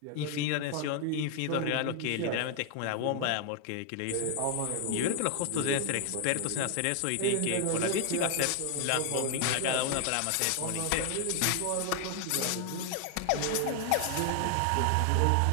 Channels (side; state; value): both; different; correlation 0.00